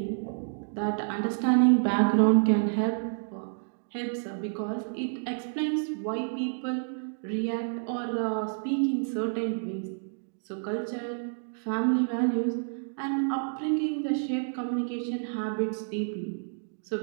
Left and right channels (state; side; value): silent; left; digital silence